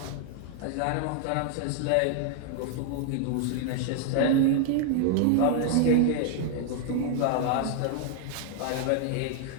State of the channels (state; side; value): different; both; correlation 0.00